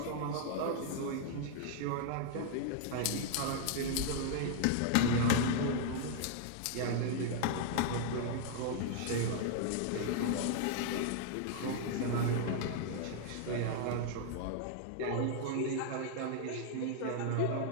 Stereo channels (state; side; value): different; both; correlation 0.00